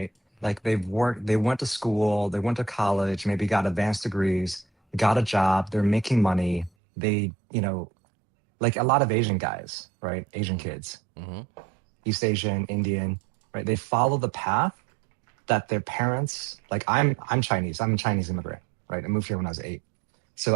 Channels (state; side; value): drops out; left; at 6.7 s